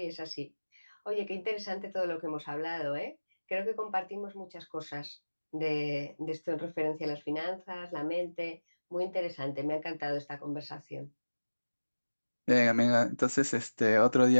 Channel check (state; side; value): inverted; both; correlation -1.00